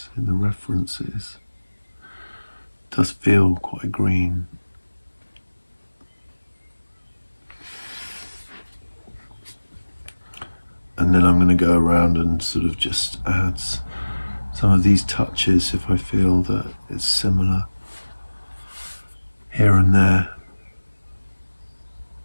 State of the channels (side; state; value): both; inverted; correlation -1.00